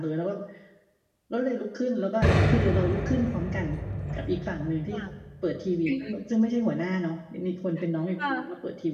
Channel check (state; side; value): identical; both; correlation 1.00